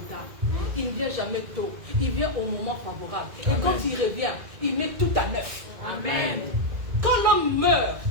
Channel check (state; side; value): late; left; 2.0 ms